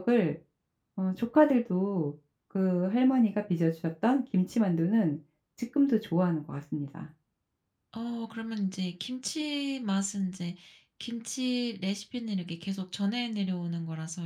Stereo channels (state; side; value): identical; both; correlation 1.00